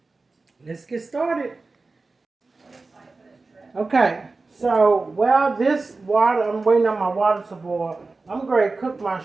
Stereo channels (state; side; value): quieter; left; 3.7 dB